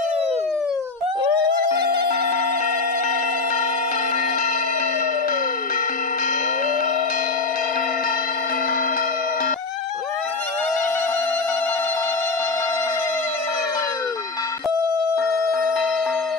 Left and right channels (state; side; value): quieter; right; 3.9 dB